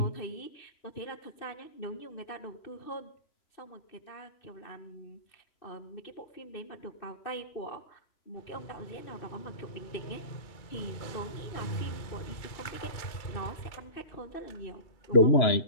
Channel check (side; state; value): right; late; 2.3 ms